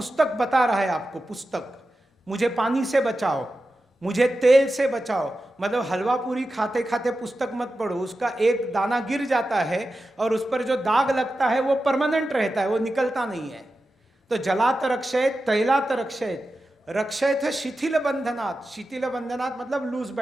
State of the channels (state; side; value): normal; both; correlation 0.92